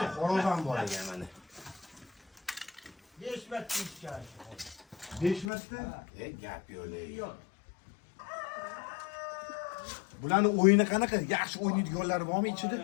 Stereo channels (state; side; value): drops out; right; at 5.5 s